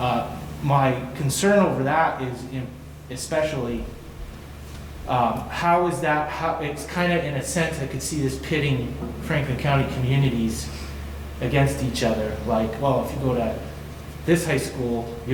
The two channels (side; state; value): both; identical; correlation 1.00